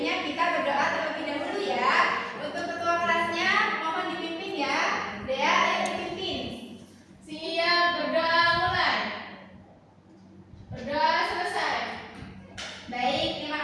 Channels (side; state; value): both; identical; correlation 1.00